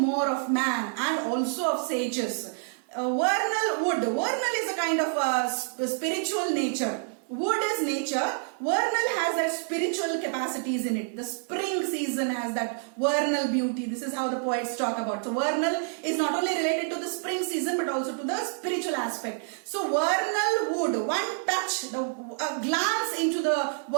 of man and also of sages. Vernal wood. Vernal is a kind of spiritual nature. Wood is nature. Vernal has that spiritual capacities in it. The spring season has that vernal beauty. This is how the poets talk about. So vernal is not only related to the spring season but also to the spiritual aspect. So vernal wood, one touch, a glance into the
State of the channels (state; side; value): silent; left; 59 dB below the other